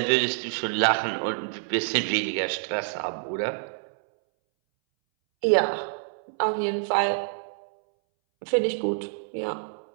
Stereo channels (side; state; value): left; silent; 60 dB below the other